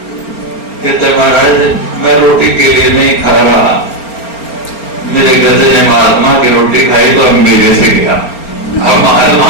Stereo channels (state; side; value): late; right; 4.3 ms